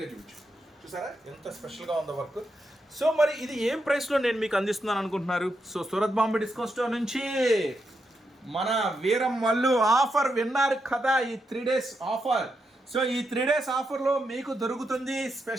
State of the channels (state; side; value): normal; both; correlation 0.84